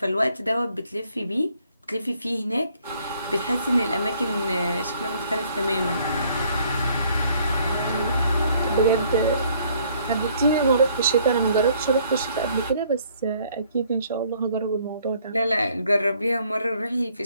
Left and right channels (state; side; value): inverted; both; correlation -0.63